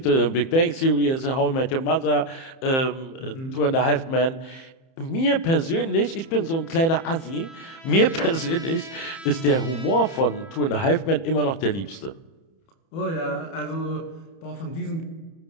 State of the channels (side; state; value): right; late; 30 ms